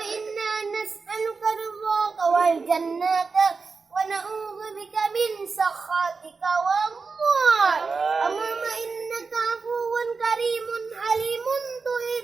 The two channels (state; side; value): quieter; left; 4.6 dB